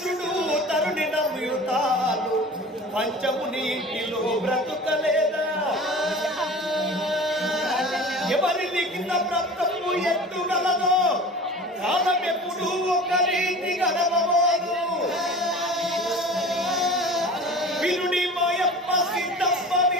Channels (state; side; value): normal; both; correlation 0.39